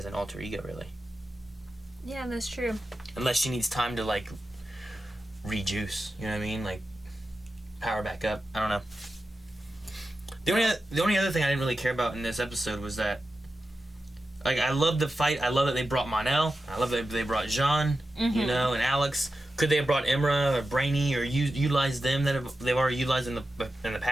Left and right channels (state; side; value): normal; both; correlation 0.92